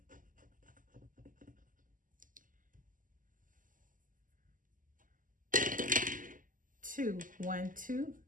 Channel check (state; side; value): late; left; 0.39 ms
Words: Two, 1, 2.